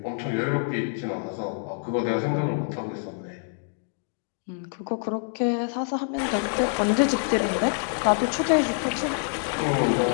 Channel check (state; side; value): silent; right; 61 dB below the other